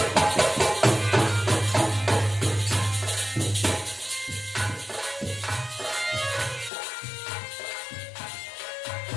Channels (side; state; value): right; drops out; at 6.7 s